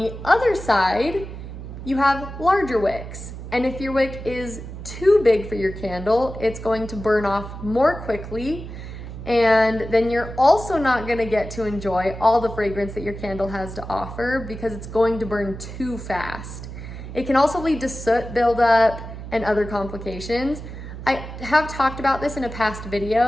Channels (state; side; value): noise; right; hum, 10 dB below the sound